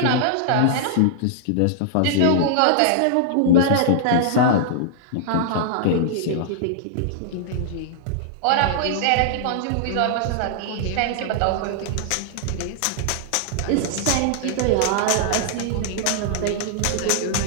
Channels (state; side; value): different; both; correlation -0.01